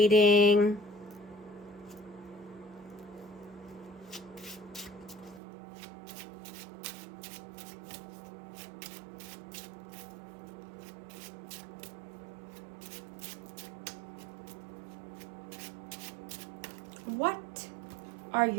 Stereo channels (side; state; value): left; drops out; at 5.4 s